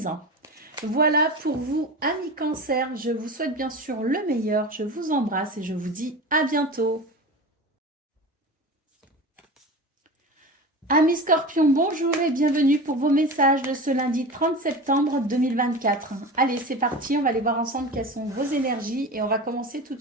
Voilà pour vous, amis Cancer. Je vous souhaite bien sûr le meilleur. Je vous embrasse et je vous dis à bientôt. Amis Scorpions, bonjour et bienvenue pour vos messages de ce lundi 30 septembre 2024. Allez, c'est parti, on va aller voir ensemble quelles sont vos énergies et on va commencer tout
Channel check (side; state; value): both; normal; correlation 0.30